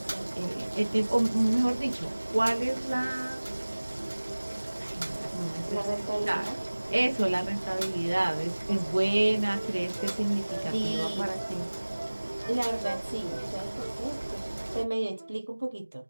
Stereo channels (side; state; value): both; inverted; correlation -1.00